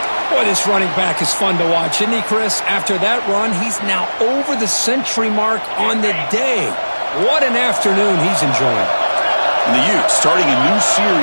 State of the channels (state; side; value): inverted; both; correlation -1.00